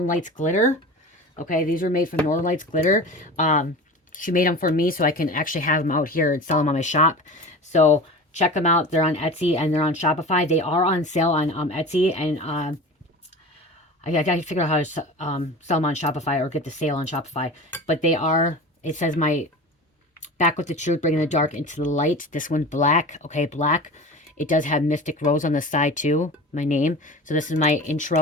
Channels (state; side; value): normal; both; correlation 0.34